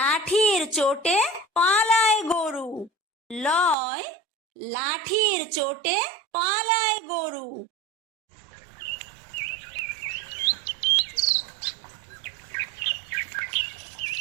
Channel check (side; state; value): left; drops out; at 3.8 s